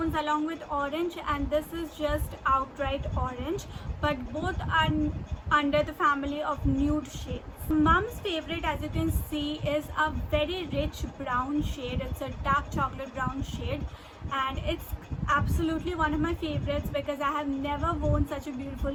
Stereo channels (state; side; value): identical; both; correlation 1.00